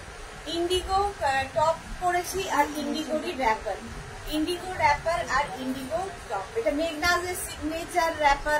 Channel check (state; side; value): identical; both; correlation 1.00